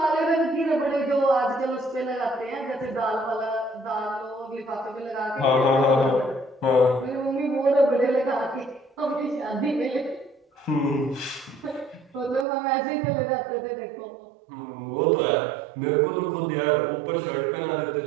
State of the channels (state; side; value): drops out; left; at 12.5 s